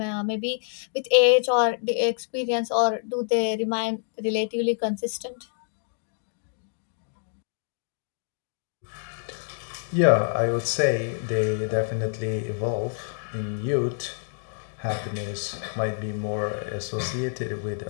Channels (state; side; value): silent; right; digital silence